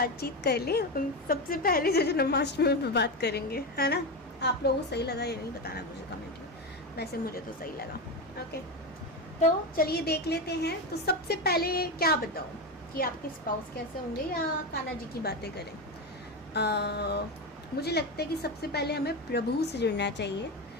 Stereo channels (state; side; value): normal; both; correlation 0.16